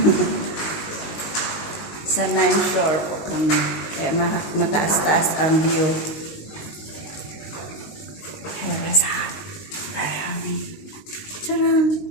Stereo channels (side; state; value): right; late; 19 ms